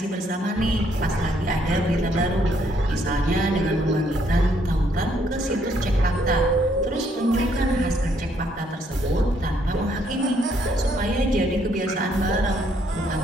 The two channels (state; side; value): normal; both; correlation 0.70